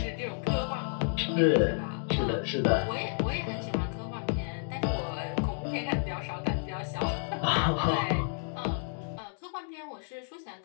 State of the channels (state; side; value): silent; right; 57 dB below the other